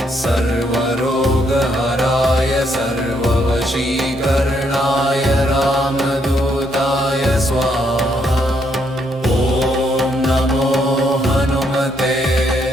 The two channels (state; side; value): normal; both; correlation 0.74